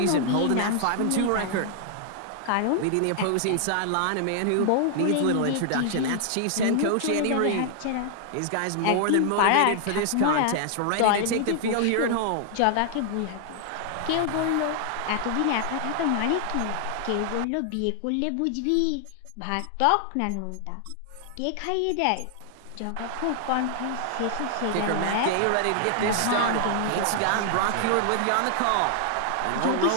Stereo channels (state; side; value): different; both; correlation 0.00